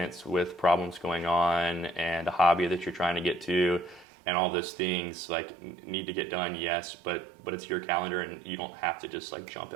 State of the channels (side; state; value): left; drops out; at 4.0 s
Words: with problems going on and a hobby that you're trying to get to and all those things like need to get done, yes, but it's your calendar and you don't have to just like jump